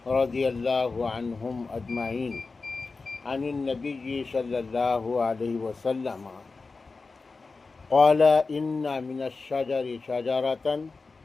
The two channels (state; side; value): quieter; right; 4.1 dB